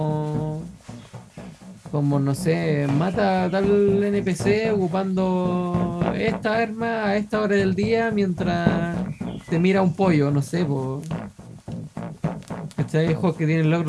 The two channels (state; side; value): identical; both; correlation 1.00